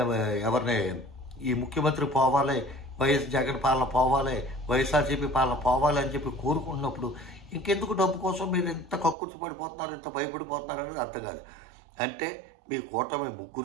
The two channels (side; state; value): left; drops out; at 9.2 s